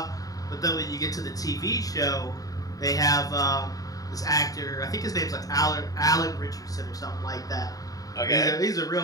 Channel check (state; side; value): late; right; 0.18 ms